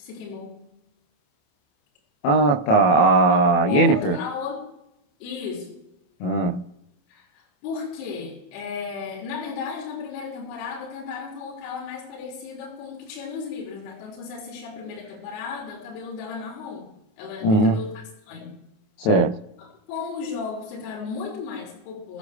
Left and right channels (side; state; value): right; late; 28 ms